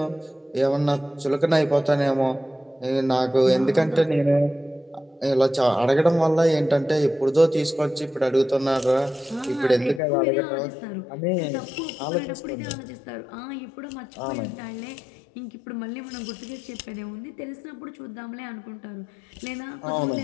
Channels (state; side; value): drops out; right; at 10.0 s